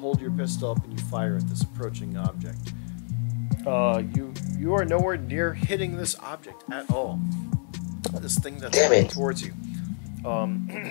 your pistol up and you fire at this approaching object. You are nowhere near hitting this object at all. This thing that's coming towards you.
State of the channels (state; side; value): silent; right; digital silence